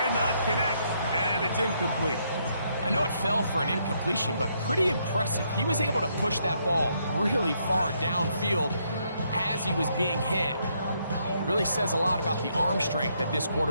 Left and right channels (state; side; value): inverted; both; correlation -0.74